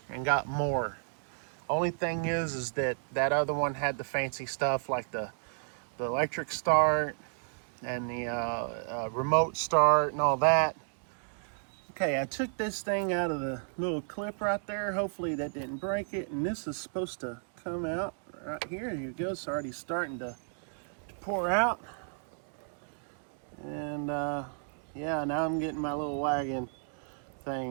and got more. Only thing is that other one had the fancy stuff like the electric start and the remote start and all that. Okay, I took this thing out of the little clip right there. Hopefully that didn't break it. And this is supposed to come out right here. Here it goes. It's already starting to pour out. And yeah, now I'm getting my little wagon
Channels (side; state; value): left; silent; digital silence